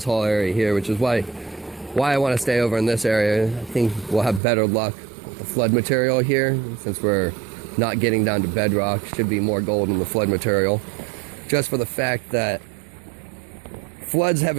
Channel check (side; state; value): left; drops out; at 4.4 s